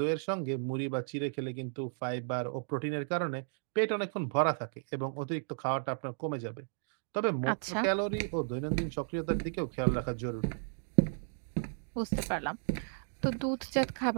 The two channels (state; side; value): silent; left; digital silence